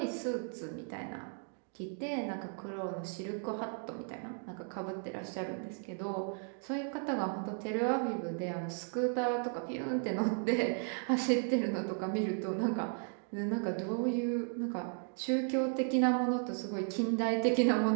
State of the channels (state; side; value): silent; left; 54 dB below the other